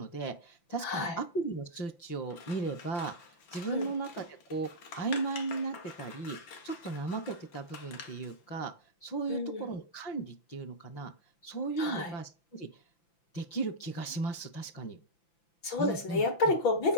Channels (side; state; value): right; late; 5.9 ms